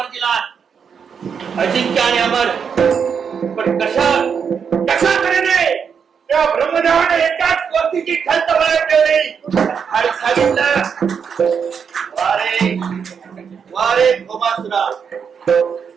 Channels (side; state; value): left; quieter; 6.7 dB